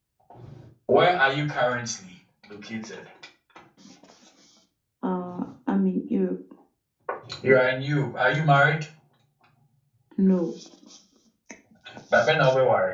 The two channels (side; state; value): both; identical; correlation 1.00